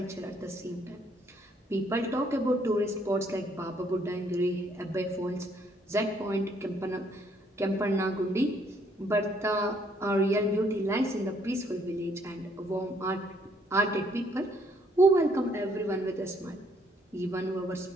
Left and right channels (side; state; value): both; normal; correlation 0.67